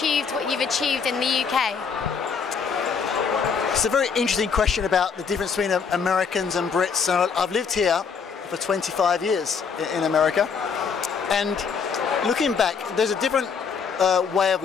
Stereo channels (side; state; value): right; quieter; 6.0 dB